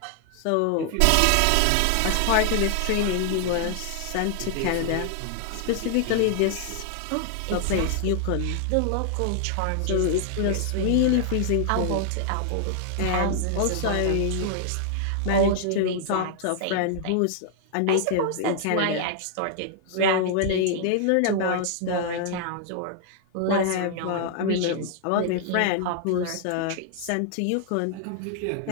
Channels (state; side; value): different; both; correlation -0.01